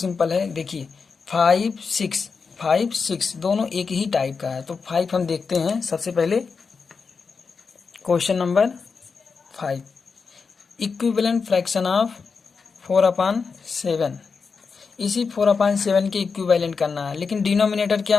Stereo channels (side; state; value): right; quieter; 5.2 dB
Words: है। देखिए 5 6 दोनों एक ही टाइप का है, तो 5 हम देखते हैं सबसे पहले। Question number 5, equivalent fraction of 4/7। इसी 4/7 के इक्विवेलेंट करना है, लेकिन डिनोमिनेटर